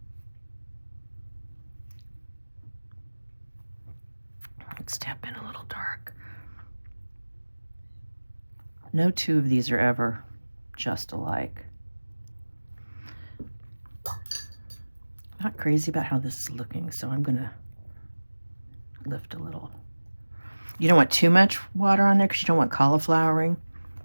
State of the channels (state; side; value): inverted; both; correlation -1.00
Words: Let's tap in a little dark. No two of these are ever just alike. Not crazy about how this is looking, so I'm gonna lift a little. You don't want too much water on there because you don't want cauliflowering.